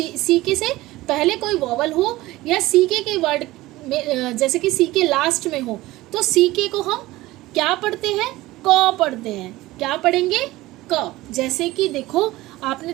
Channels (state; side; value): quieter; left; 18.1 dB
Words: से पहले कोई वॉवल हो, या सीके के वर्ड में जैसे कि सीके लास्ट में हो, तो सीके को हम क्या पढ़ते हैं? क पढ़ते हैं। क्या पढ़ेंगे? क। जैसे कि देखो, आपने